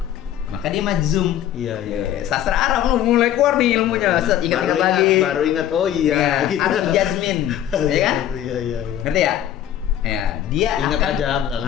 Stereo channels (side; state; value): right; quieter; 11.2 dB